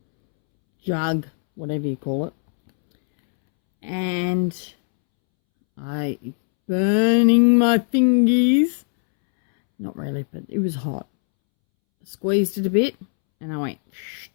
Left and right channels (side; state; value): right; silent; 65 dB below the other